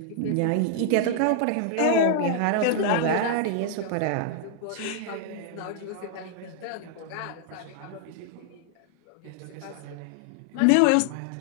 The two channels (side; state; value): both; different; correlation 0.00